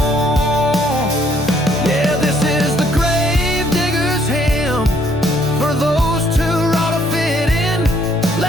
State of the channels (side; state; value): both; normal; correlation 0.65